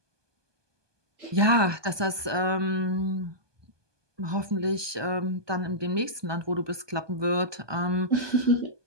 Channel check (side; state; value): left; late; 1.2 ms